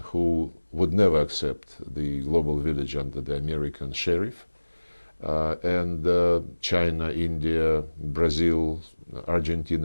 who would never accept the global village under the American sheriff, and China, India, Brazil,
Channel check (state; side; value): inverted; both; correlation -1.00